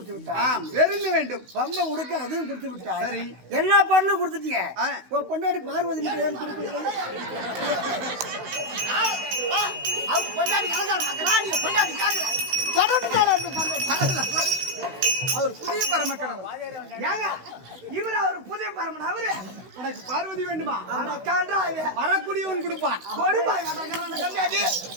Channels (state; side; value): late; left; 16 ms